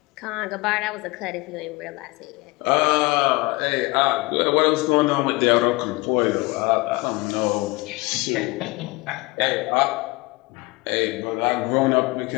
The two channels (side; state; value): right; quieter; 23.7 dB